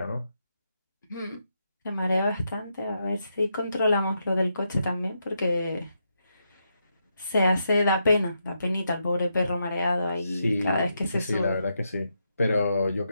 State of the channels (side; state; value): both; inverted; correlation -0.82